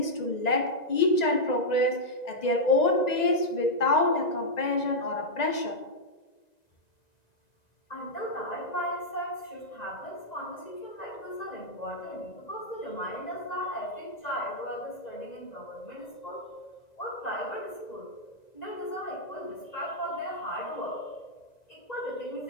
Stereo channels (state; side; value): late; right; 1.9 ms